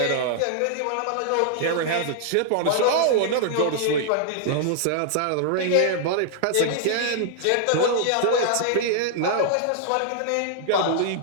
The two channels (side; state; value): both; different; correlation -0.01